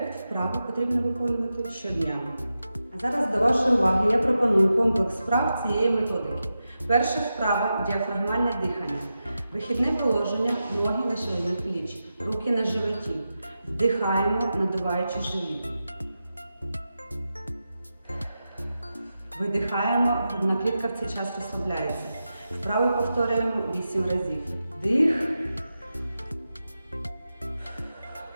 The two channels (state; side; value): inverted; both; correlation -0.91